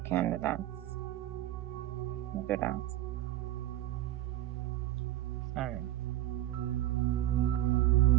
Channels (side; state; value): left; quieter; 14.0 dB